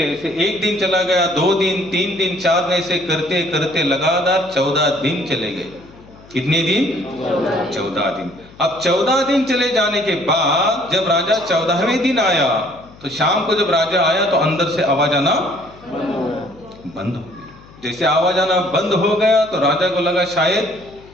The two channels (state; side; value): noise; left; hum, 23 dB below the sound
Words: ऐसे एक दिन चला गया, 2 दिन, 3 दिन, 4 दिन, ऐसे करते करते लगातार 14 दिन चले गए। कितने दिन? 14 दिन। अब 14 दिन चले जाने के बाद जब राजा 14वें दिन आया तो शाम को जब राजा आया तो अंदर से आवाज आना बंद हो गई। जैसे आवाज आना बंद हो गया तो राजा को लगा शायद